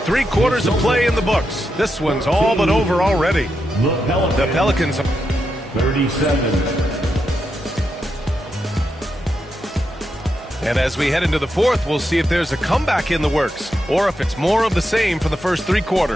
quarters of play in the books. This one's all but over already. The Pelicans. 37. And as we head into the fourth, we'll see if there's a comeback in the works or if it's more of the same for the first 3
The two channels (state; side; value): normal; both; correlation 0.85